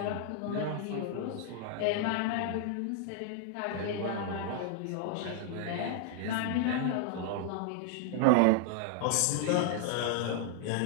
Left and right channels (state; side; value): different; both; correlation 0.00